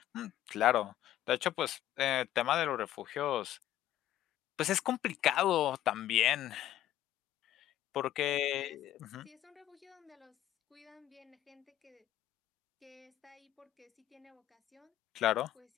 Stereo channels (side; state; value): right; quieter; 12.9 dB